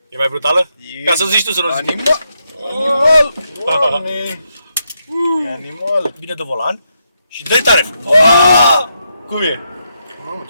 E mai brutală? Ca să zici tu, să nu zic. Animal! Doamne! E animal! Bine de volan și dă-i tare. Cum e? Mamă,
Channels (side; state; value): both; inverted; correlation -0.81